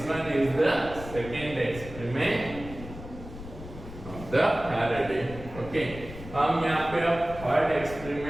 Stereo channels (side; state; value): left; noise; rumble, 13 dB below the sound